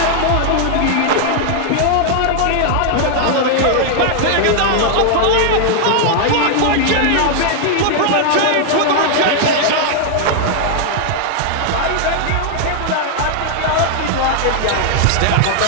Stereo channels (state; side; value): different; both; correlation 0.00